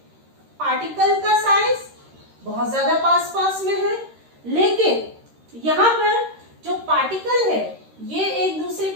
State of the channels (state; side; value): late; left; 13 ms